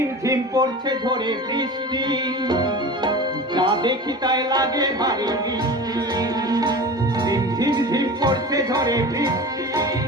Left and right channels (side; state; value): both; normal; correlation 0.33